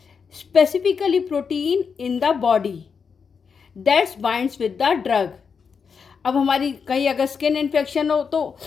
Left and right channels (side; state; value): right; quieter; 6.0 dB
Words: specifically protein in the body that's binds with the drug. अब हमारी कहीं अगर स्किन इन्फेक्शन हो तो